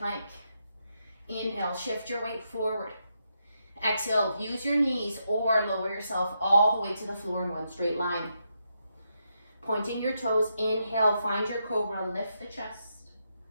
Inhale, shift your weight forward. Exhale, use your knees or lower yourself all the way to the floor in 1 straight line. Pointing your toes, inhale, find your cobra, lift the chest.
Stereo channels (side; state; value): both; inverted; correlation -0.82